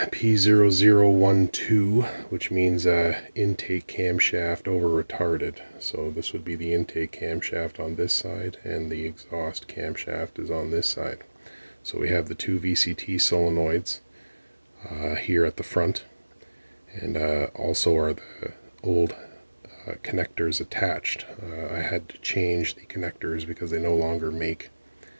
P0012, which means intake camshaft over retarded. So this would be the intake camshaft on this side, and the exhaust camshaft is on this side. So we have the two VCT solenoids here at the front, and also are the old connectors attached. I had to change the connectors because they no longer make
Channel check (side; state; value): both; inverted; correlation -1.00